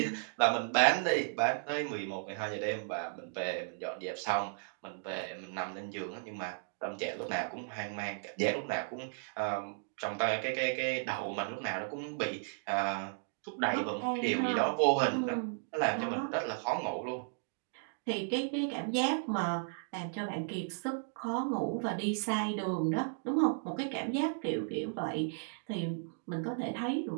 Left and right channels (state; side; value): silent; left; digital silence